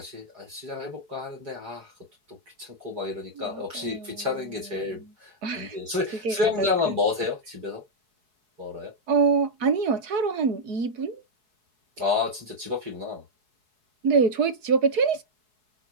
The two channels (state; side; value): late; left; 4.7 ms